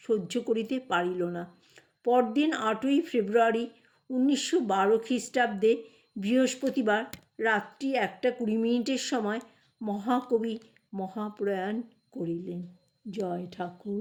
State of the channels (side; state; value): both; identical; correlation 1.00